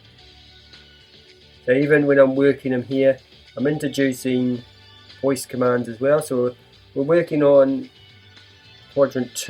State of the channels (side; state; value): both; identical; correlation 1.00